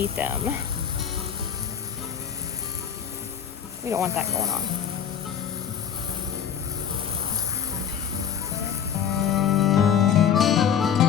them. We don't want that going on.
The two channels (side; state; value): right; quieter; 8.2 dB